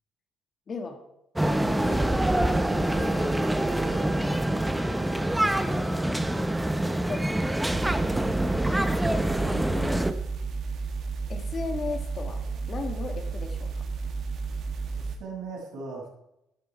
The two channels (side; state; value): both; normal; correlation 0.95